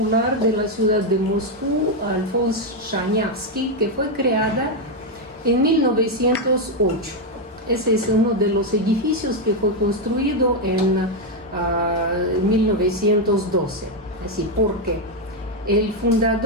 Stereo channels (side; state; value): both; normal; correlation 0.03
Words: de la ciudad de Moscú, Alfons Shanyavsky, que fue creada en 1908. Ese es uno de los edificios que fue construido en 1912. Así, porque el